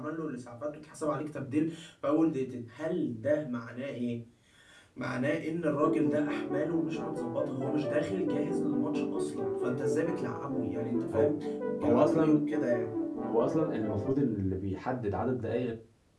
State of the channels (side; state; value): both; identical; correlation 1.00